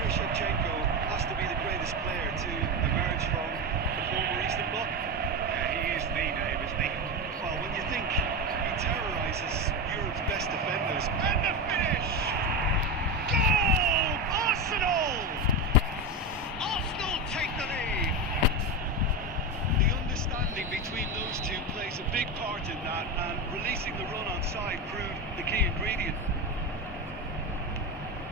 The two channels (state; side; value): normal; both; correlation 0.16